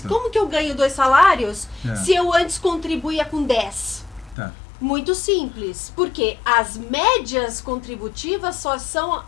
que eu ganho 2 salários se eu antes contribuía com 10? Muito simples, porque as médias contributivas só são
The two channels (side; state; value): right; drops out; at 4.4 s